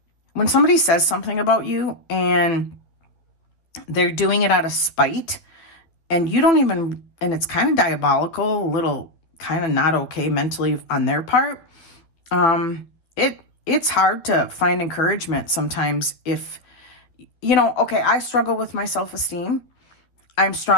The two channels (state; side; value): late; right; 12 ms